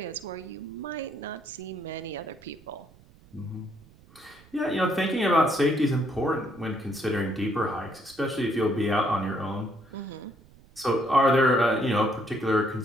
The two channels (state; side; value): noise; right; rumble, 25 dB below the sound